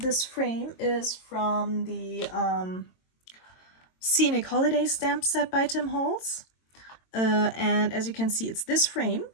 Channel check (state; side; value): late; right; 22 ms